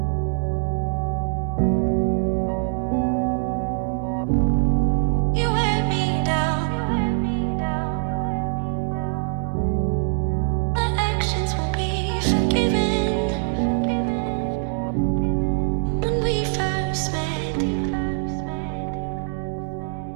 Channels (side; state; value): left; silent; digital silence